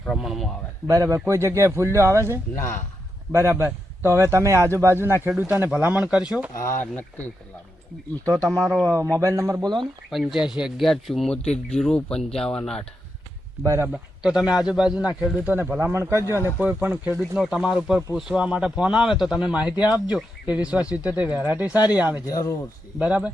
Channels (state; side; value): normal; both; correlation 0.85